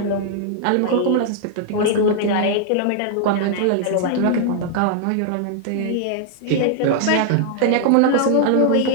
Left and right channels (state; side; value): different; both; correlation 0.00